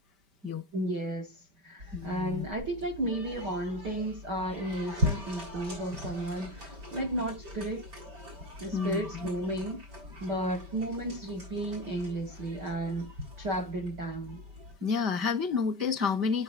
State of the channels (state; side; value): late; left; 5.1 ms